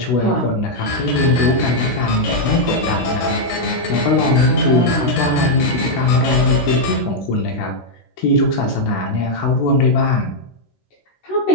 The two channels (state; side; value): late; right; 16 ms